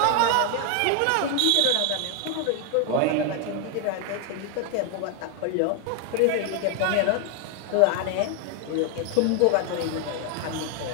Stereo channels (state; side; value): different; both; correlation 0.01